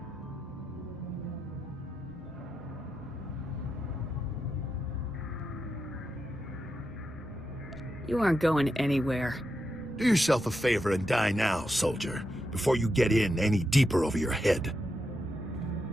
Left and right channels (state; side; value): normal; both; correlation 0.86